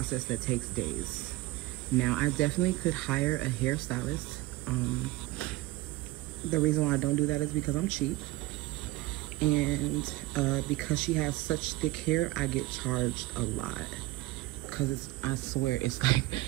that takes days. Now, I definitely could hire a hairstylist. The reason why I don't do that is because I'm cheap. And because she has such thick hair, I get charged a lot. Because I swear, it's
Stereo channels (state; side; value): quieter; left; 17.9 dB